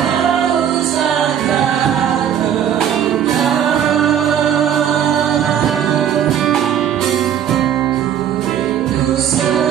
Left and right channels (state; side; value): quieter; left; 9.4 dB